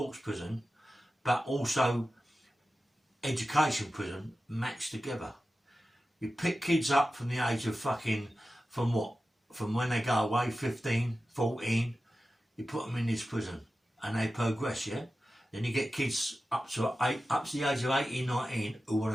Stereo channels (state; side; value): normal; both; correlation 0.94